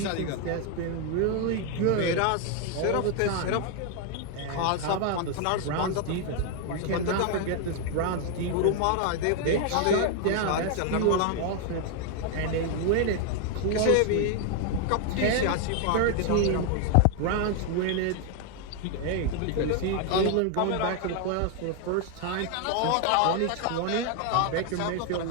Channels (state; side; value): different; both; correlation 0.00